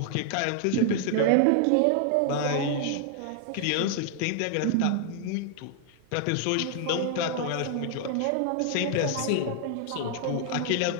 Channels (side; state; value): both; different; correlation 0.00